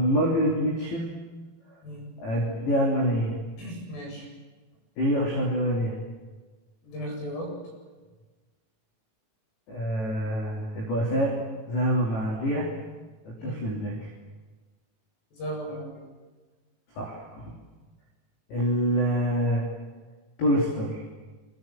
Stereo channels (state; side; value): late; right; 18 ms